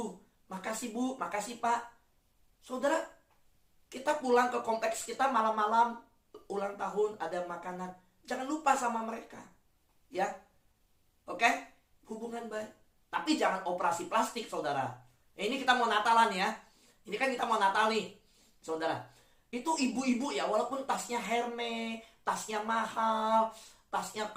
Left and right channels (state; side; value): identical; both; correlation 1.00